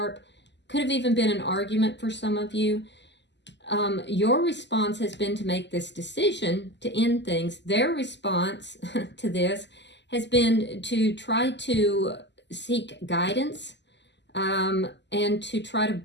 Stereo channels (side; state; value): right; late; 0.51 ms